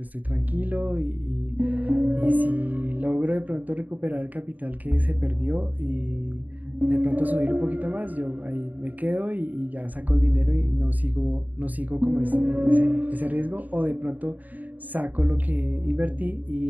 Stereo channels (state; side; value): late; left; 0.080 ms